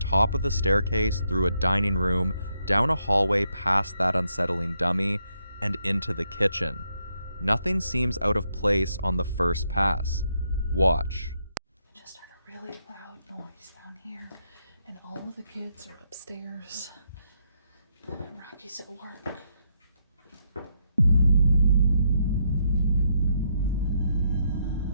of the staircase through a dining room, down a hallway past that unsettling dummy, and into the kitchen. Nothing seems out of place on the first pass. Watch. I just heard a really loud noise down here, and all of the kids are upstairs. Rocky's at work. What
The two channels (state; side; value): inverted; both; correlation -0.78